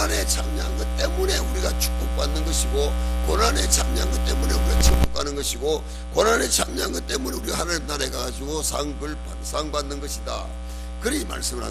참여한 것 때문에 우리가 축복받는 것이고, 고난에 참여한 것 때문에 우리가 천국 가는 것이고, 고난에 참여한 것 때문에 우리가 하나님 나라에 가가지고 상 받는 것이다. 그리 말씀을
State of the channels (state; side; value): identical; both; correlation 1.00